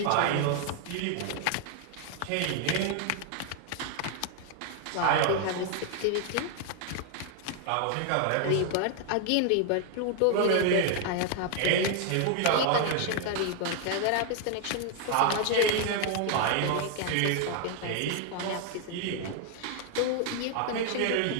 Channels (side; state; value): both; different; correlation 0.00